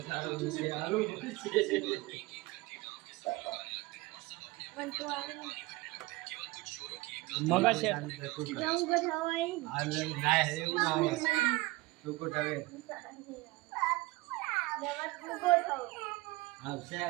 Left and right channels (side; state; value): left; quieter; 21.4 dB